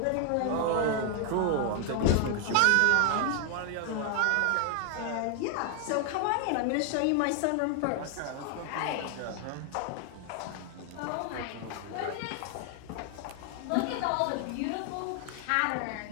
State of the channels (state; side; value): different; both; correlation 0.00